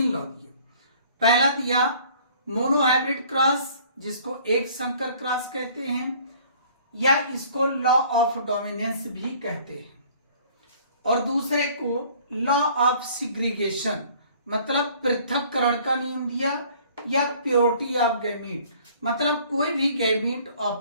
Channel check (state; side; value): inverted; both; correlation -0.54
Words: पहला दिया मोनोहाइब्रिड क्रॉस, जिसको एक संकर क्रॉस कहते हैं, या इसको लॉ ऑफ डोमिनेंस भी कहते हैं। और दूसरे को लॉ ऑफ सिग्रीगेशन, मतलब पृथक्करण का नियम दिया, या प्योरिटी ऑफ गैमीट, मतलब कोई भी गैमीट